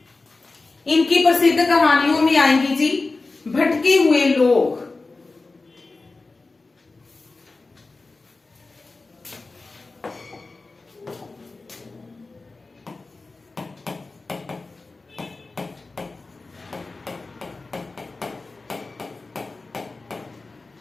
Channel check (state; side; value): quieter; right; 3.6 dB